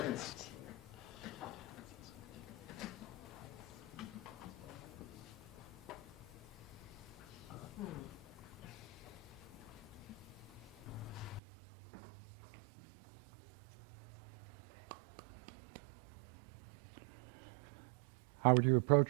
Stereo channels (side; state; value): left; drops out; at 11.4 s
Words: How would you